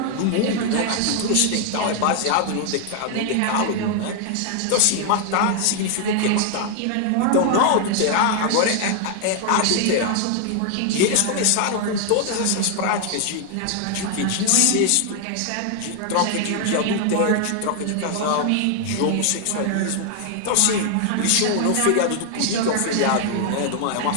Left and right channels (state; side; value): different; both; correlation 0.00